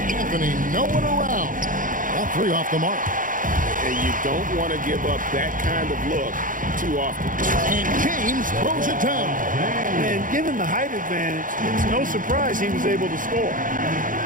Anthony nowhere around. That three off the mark. And you don't want to give up that kind of look too often. And James throws it down. And given the height advantage, it's no surprise he was able to score.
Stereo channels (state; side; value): late; left; 0.39 ms